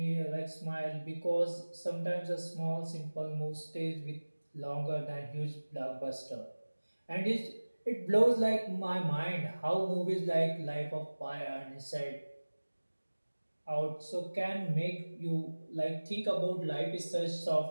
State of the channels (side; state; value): both; inverted; correlation -1.00